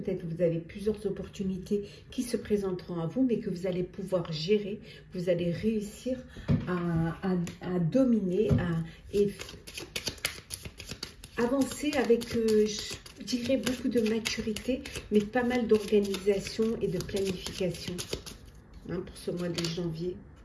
que vous avez plusieurs opportunités qui se présenteront à vous, mais que vous allez pouvoir gérer, vous allez réussir à dominer et avancer avec, je dirais, beaucoup de maturité, mais pas mal d'organisation et de planification, hein, pour ce mois de janvier.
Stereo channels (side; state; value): both; identical; correlation 1.00